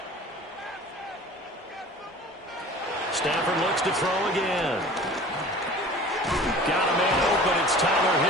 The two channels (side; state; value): both; normal; correlation 0.42